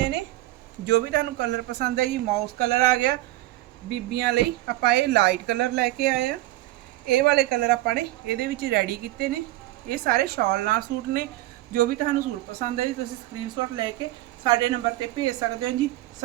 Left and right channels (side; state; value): left; quieter; 17.2 dB